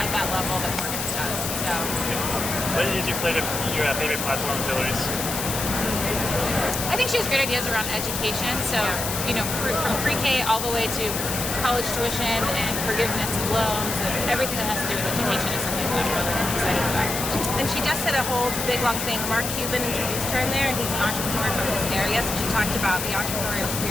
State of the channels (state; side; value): noise; left; hiss, 3 dB below the sound